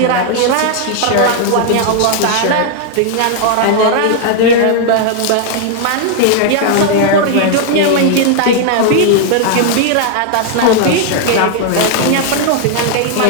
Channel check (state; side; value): different; both; correlation 0.00